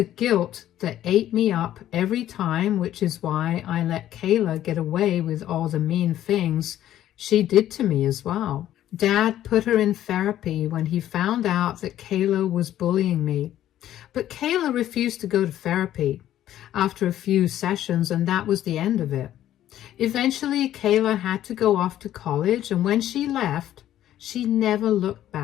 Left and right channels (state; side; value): quieter; right; 12.3 dB